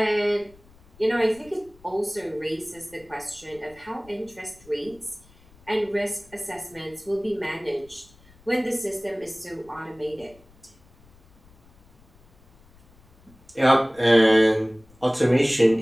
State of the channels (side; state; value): left; noise; rumble, 28 dB below the sound